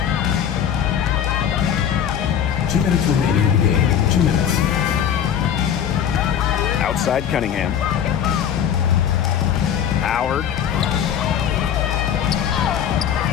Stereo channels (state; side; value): quieter; right; 9.1 dB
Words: Two minutes remaining in the game. 2 minutes. Outside Cunningham. Howard.